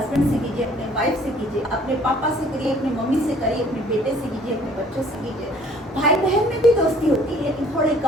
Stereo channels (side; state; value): both; normal; correlation 0.56